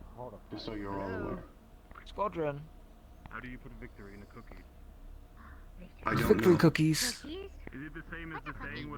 Hold up. Just so you're all aware. Squadron. How do you put victory in a cookie? I don't Victory know. cookies. Is it the same as the saying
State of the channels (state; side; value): identical; both; correlation 1.00